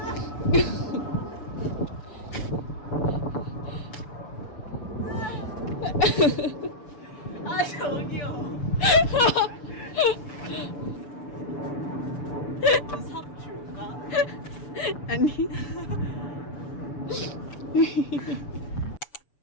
아, 저기요. 삽 줄까? 아니.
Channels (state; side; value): late; right; 6.9 ms